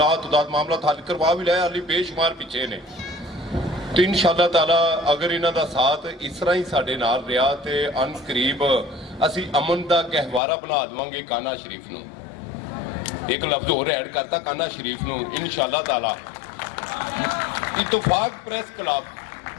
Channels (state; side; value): drops out; right; at 10.4 s